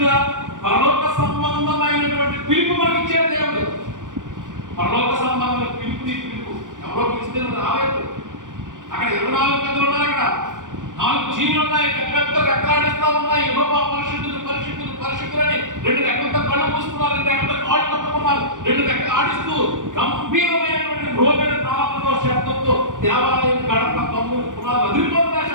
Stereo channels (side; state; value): left; late; 0.87 ms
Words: పరలోక సంబంధమైనటువంటి పిలుపు మనకి ఇచ్చే దేవుడు. పరలోక సంబంధమైన పిలుపు నీ పిలుపు. ఎవరో పిలిస్తే రాలేదు. అక్కడ 24 పెద్దలు ఉన్నారు. అక్కడ 4 జీవులు ఉన్నాయి. పెద్ద పెద్ద రెక్కలాడిస్తా ఉన్నాయి. యెహోవా పరిశుద్ధులు పరిశుద్ధులు పరిశుద్ధులని 2 రెక్కలతో కళ్ళు మూసుకున్నారు, 2 రెక్కలతో కాళ్ళు పట్టుకున్నారు, 2 రెక్కలు ఆడిస్తూ గంభీరమైనటువంటి రోగిని తాళంతో శబ్దంతో దేవాలయం గడప తమ్ముడు పునాలు అదిరిపోతున్న